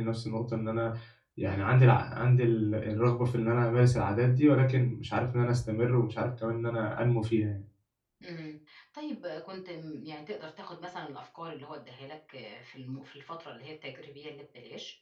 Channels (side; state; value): both; identical; correlation 1.00